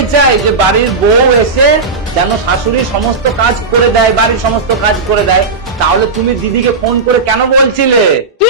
চাই যে বাড়ির বউ এসে যেন শাশুড়ির সমস্ত কাজ করে দেয়, বাড়ির সমস্ত কাজ করে দেয়। তাহলে তুমি দিদিকে ফোন করে কেন বলছিলে? কি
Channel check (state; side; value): quieter; left; 4.1 dB